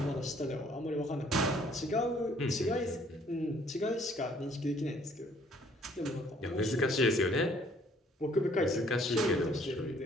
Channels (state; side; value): normal; both; correlation 0.61